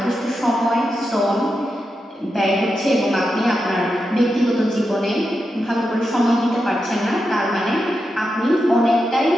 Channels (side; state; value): both; normal; correlation 0.87